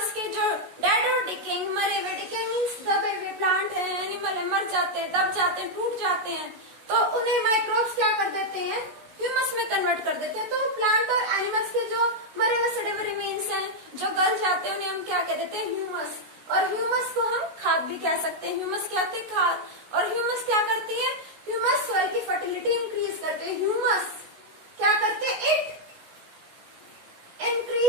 के जो dead और decaying, मरे हुए, decaying means दबे हुए प्लांट है, एनिमल है, मर जाते हैं, दब जाते हैं, टूट जाते हैं, तो उन्हें माइक्रोब्स क्या कर देते हैं, ह्यूमस में कन्वर्ट कर देते हैं। तो प्लांट और एनिमल्स के जो मरे हुए सड़े हुए रिमेन्स हैं, जो गल जाते हैं, उन्हें हम क्या कह देते हैं, ह्यूमस। और ह्यूमस को हम खाद भी कह सकते हैं। ह्यूमस क्या होती है, खाद। और ह्यूमस क्या करती है, ह्यूमस सॉइल की फर्टिलिटी इंक्रीज करते हैं। ह्यूमस क्या करते हैं, it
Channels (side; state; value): left; late; 16 ms